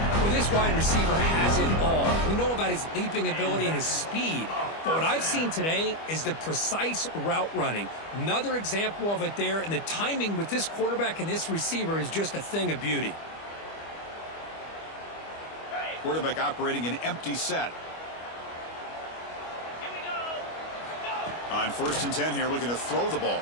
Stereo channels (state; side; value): late; right; 25 ms